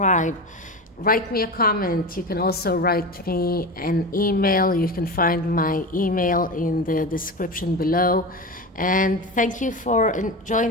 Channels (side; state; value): both; normal; correlation 0.25